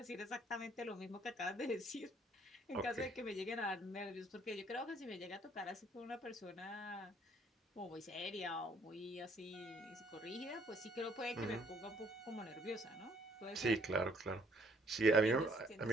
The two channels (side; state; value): both; normal; correlation 0.64